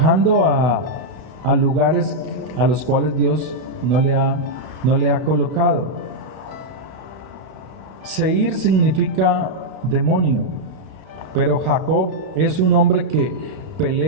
a lugares a los cuales Dios no le ha colocado. Seir significa demonio, pero Jacob es un hombre que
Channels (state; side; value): late; left; 32 ms